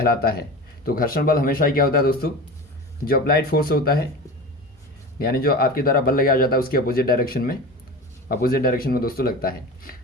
है। तो घर्षण बल हमेशा ही क्या होता है दोस्तों, जो अप्लाइड फोर्स होता है, यानी जो आपके द्वारा बल लगाया जाता है उसके अपोजिट डायरेक्शन में दोस्तों लगता है।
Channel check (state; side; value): normal; both; correlation 0.31